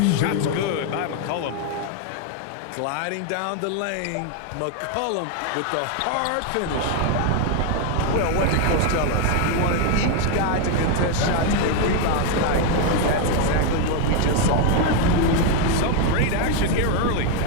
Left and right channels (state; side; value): different; both; correlation 0.01